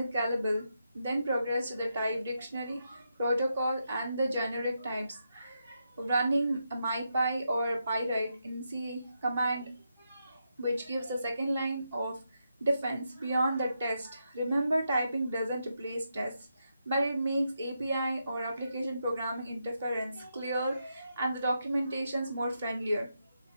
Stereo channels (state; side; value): inverted; both; correlation -0.83